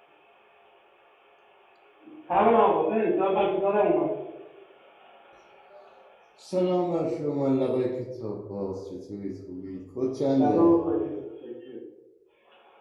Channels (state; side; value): identical; both; correlation 1.00